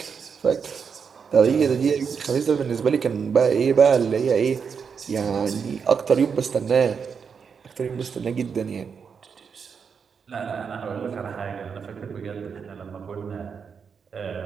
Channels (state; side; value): quieter; left; 6.3 dB